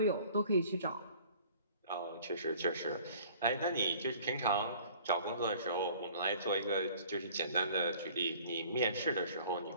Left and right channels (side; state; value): both; inverted; correlation -0.51